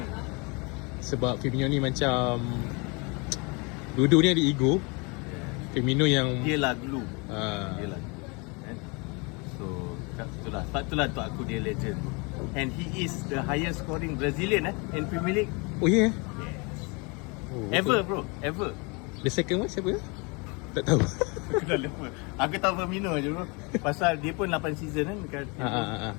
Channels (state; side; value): quieter; right; 30.2 dB